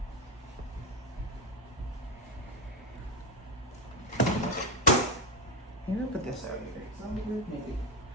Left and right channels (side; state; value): both; normal; correlation 0.11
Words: Maybe I'll put this out here. Is that good? Maybe.